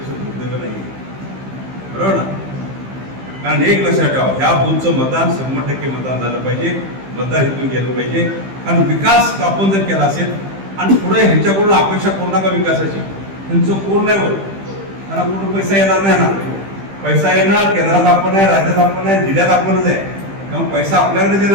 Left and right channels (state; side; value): late; left; 15 ms